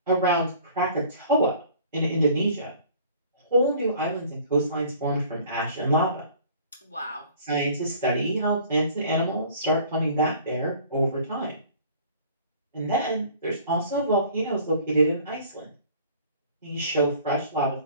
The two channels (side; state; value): both; inverted; correlation -0.50